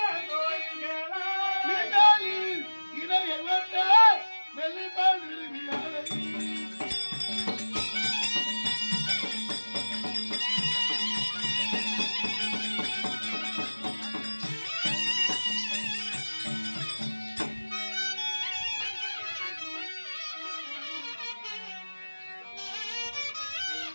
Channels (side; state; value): both; inverted; correlation -1.00